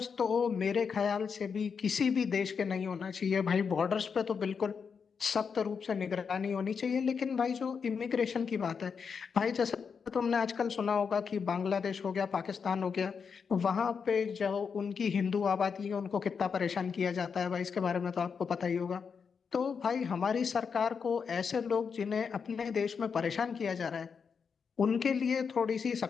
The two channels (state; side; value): quieter; right; 6.1 dB